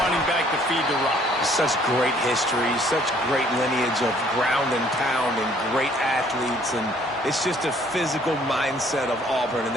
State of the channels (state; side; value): normal; both; correlation 0.61